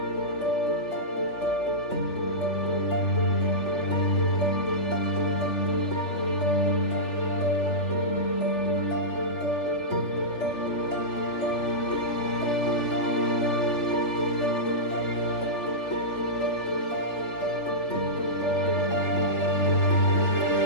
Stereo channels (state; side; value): late; right; 3.4 ms